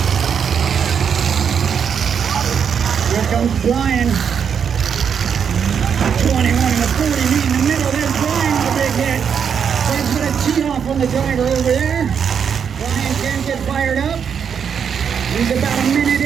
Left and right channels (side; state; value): left; quieter; 7.3 dB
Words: Here comes Brian. 21 and a 40 meet in the middle. There's Brian with a big hit. Fred's going to tee off on the driver over there. Brian can't get fired up. He's about a minute